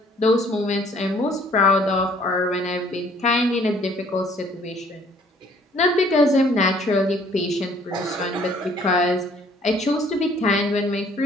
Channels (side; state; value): both; normal; correlation 0.59